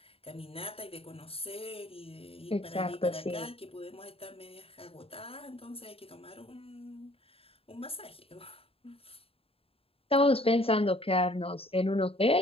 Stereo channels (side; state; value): right; late; 0.27 ms